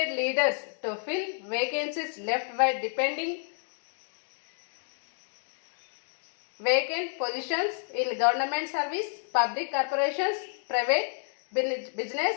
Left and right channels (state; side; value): silent; right; 58 dB below the other